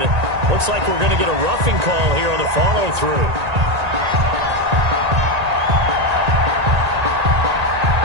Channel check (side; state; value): left; late; 1.9 ms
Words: Looks like we're going to get a roughing call here on the follow-through.